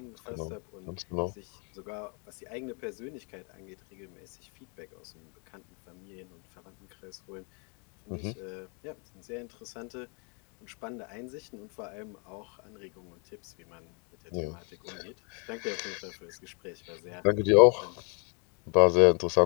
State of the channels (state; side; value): quieter; right; 36.3 dB